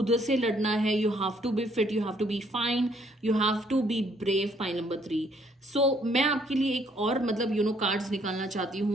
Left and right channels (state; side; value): normal; both; correlation 0.66